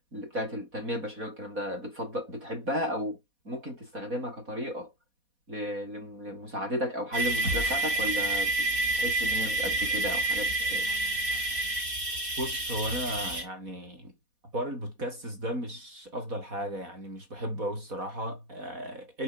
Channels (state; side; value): late; left; 4.1 ms